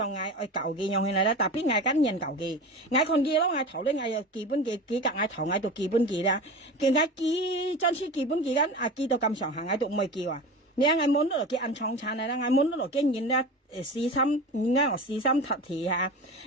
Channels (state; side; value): normal; both; correlation 0.31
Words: ngày ở cầu cái nhau này là đặc biệt ngày cá nhân cầu cái ngày còn kia đó ngày thầu đấy ngày kỳ bên cái cả ngày thầu ngày tụ kỳ bên kia đó cái ngày kỳ chân sĩ kỳ bên kia đó à kỳ tụ cầm sòng hàng ngày tụ mười kỳ à nếu ngày muốn đó cái ăn chong chan này là ngày muốn đó cái nhìn đó xí xăm nghe ở xí xăm thật thì ha